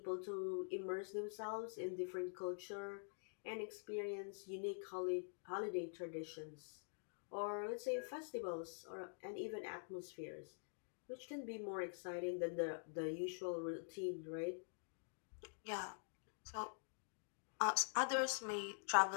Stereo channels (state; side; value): silent; right; digital silence